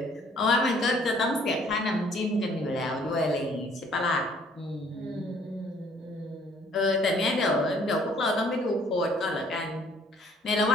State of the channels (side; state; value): both; normal; correlation 0.60